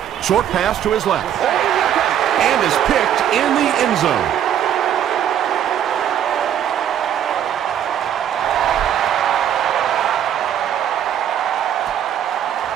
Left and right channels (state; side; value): quieter; left; 10.0 dB